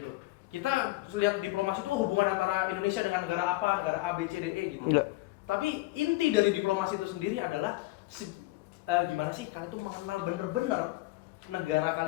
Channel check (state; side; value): quieter; right; 20.2 dB